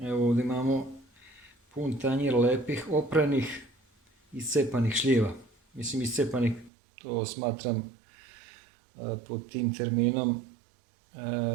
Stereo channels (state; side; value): drops out; left; at 6.7 s